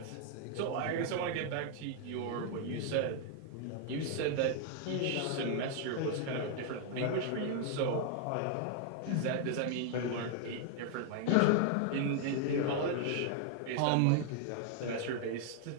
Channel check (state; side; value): different; both; correlation 0.00